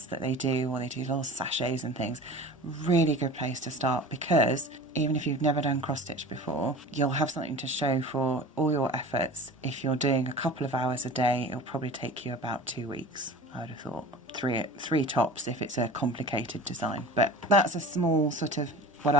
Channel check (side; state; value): both; normal; correlation 0.38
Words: that they do, or they do little sachets and things, really good place to start, because even if you've never done cross stitch before, you'll have something to show for all your efforts. If you're doing a couple of hours a day, it'll probably take you about 2 weeks. I would have thought three tops if it's a complicated design, but that's a small sort of what